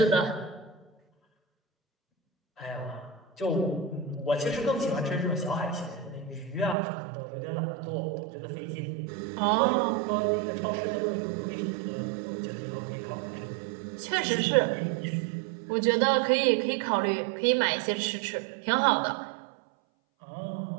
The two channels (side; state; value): left; drops out; at 6.8 s